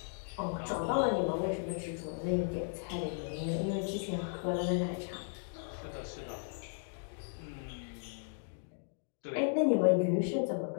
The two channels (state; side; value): silent; right; digital silence